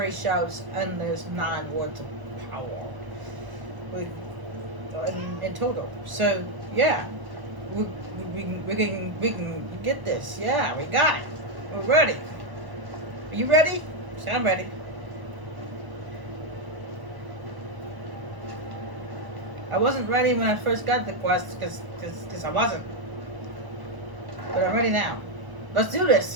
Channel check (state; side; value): late; left; 1.0 ms